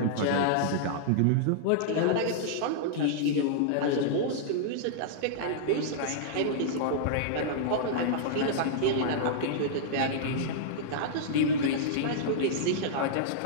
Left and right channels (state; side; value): different; both; correlation -0.02